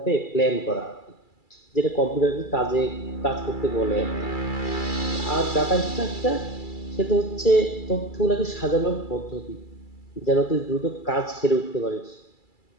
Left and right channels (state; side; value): late; right; 2.3 ms